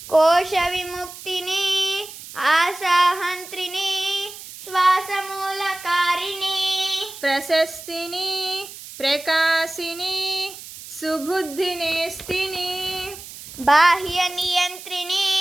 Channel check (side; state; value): right; noise; hiss, 14 dB below the sound